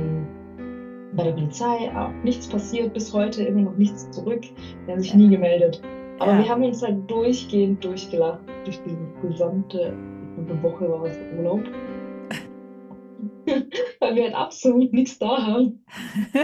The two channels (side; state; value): both; identical; correlation 1.00